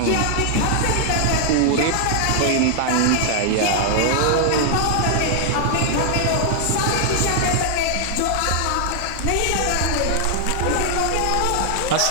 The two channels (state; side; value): different; both; correlation 0.00